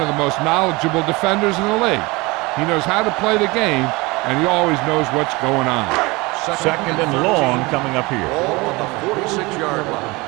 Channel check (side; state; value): left; quieter; 23.9 dB